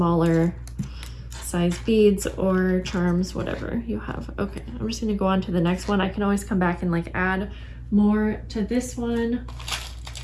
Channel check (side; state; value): both; identical; correlation 1.00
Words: size beads or charms, whatever you have. Okay, I'm just gonna go on to the next one. I can always come back and like add more to this one.